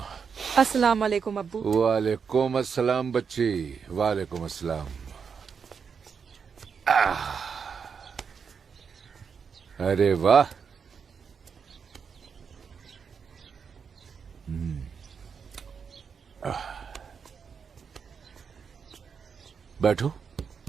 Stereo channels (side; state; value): left; quieter; 6.3 dB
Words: अस्सलाम वालेकुम अब्बू। वालेकुम अस्सलाम बच्ची, वालेकुम अस्सलाम। अरे वाह, बैठो।